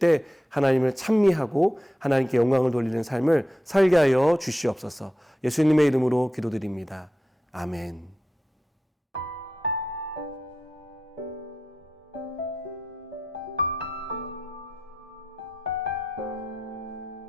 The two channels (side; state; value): both; normal; correlation 0.89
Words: 하나님을 찬미하고 하나님께 영광을 돌리는 삶을 살게 하여 주시옵소서. 예수님의 이름으로 기도드립니다. 아멘.